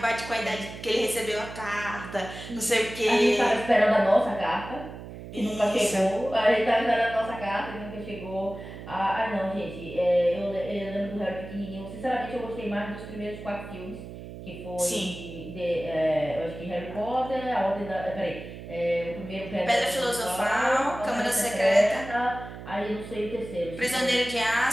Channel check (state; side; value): noise; right; hum, 12 dB below the sound